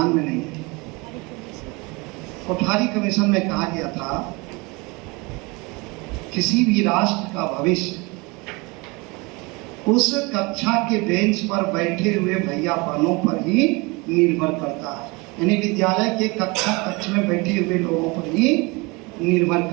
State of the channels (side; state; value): left; quieter; 26.4 dB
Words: में नहीं है। कोठारी कमीशन में कहा गया था किसी भी राष्ट्र का भविष्य उस कक्षा के बेंच पर बैठे हुए भैया बहनों पर ही निर्भर करता है, यानी विद्यालय के कक्ष में बैठे हुए लोगों पर ही निर्भर